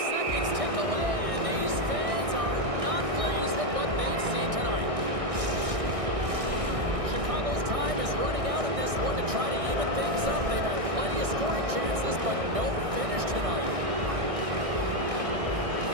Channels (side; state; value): left; late; 1.6 ms